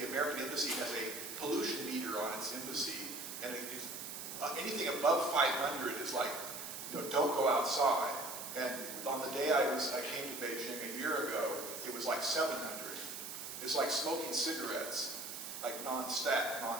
American Embassy has a pollution meter on its embassy, and anything above 500 is like, don't go outside. And on the day I came to Beijing a year ago, it was like 700. It's like smoking cigarettes, like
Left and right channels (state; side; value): noise; right; hiss, 8 dB below the sound